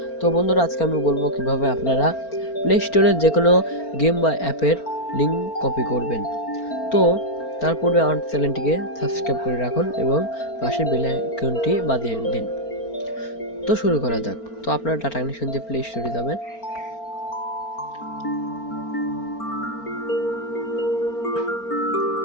তো বন্ধুরা, আজকে আমি বলবো কিভাবে আপনারা প্লে স্টোরের যে কোনো গেম বা অ্যাপের লিঙ্ক কপি করবেন। তো তার পূর্বে আমার চ্যানেলটিকে সাবস্ক্রাইব করে রাখুন এবং পাশের বেল আইকনটি বাজিয়ে দিন। তো শুরু করা যাক। তো আপনারা ডাটা কানেকশন দিয়ে প্লে স্টোরে যাবেন।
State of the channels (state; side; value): late; right; 4.4 ms